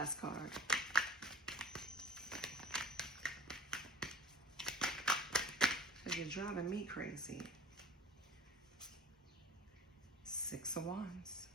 card. Because you're driving me crazy. Six of Wands.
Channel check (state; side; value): normal; both; correlation 0.44